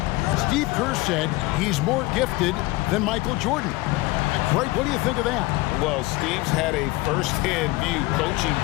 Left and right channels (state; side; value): quieter; right; 20.6 dB